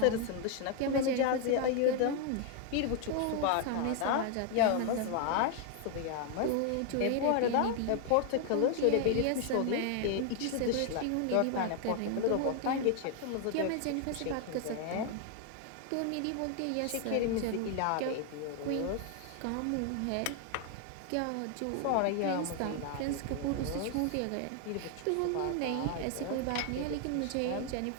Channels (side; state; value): both; different; correlation 0.00